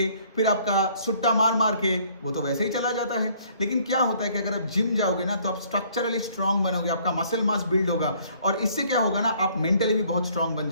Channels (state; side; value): inverted; both; correlation -0.60